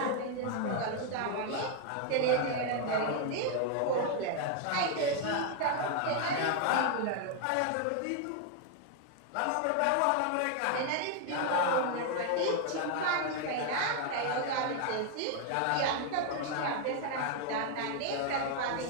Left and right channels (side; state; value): both; different; correlation 0.00